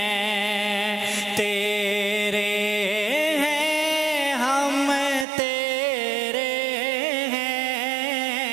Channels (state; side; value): drops out; left; at 5.2 s